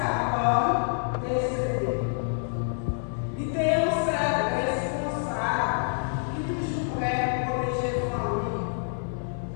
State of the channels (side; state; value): right; silent; digital silence